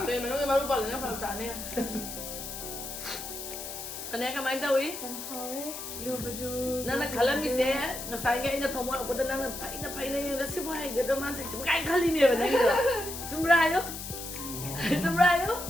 Đây mà nó cái baru balik nó phải trả nè. Sana ka main tahu eh? Nana kalam ni saya ngasai nga ina thomo ako da nana pai na yung nasi buhay gado man tayo. Bukai kali ni ba nang ito? Sumbrayo? Sumbrayo?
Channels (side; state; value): left; noise; hiss, 8 dB below the sound